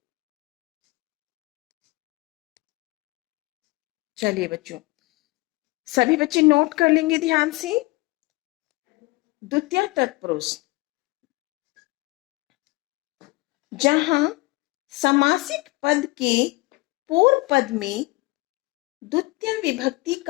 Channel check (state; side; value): quieter; right; 23.7 dB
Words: चलिए बच्चों, सभी बच्चे नोट कर लेंगे ध्यान से। द्वितीय तत्पुरुष, जहां समासिक पद के पूर्व पद में द्वितीय विभक्ति